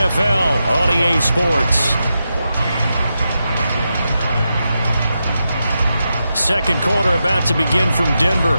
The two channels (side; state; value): both; inverted; correlation -0.87